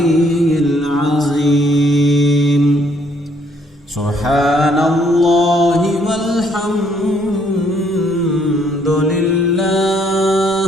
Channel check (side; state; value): both; normal; correlation 0.67